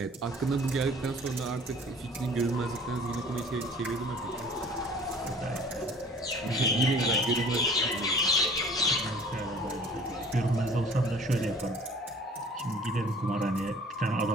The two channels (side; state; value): both; normal; correlation 0.49